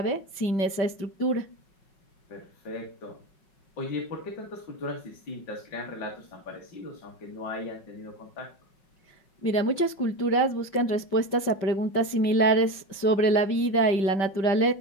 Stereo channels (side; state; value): right; late; 5.1 ms